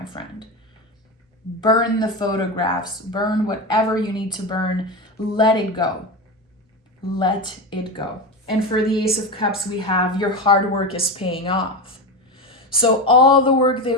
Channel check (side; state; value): both; normal; correlation 0.19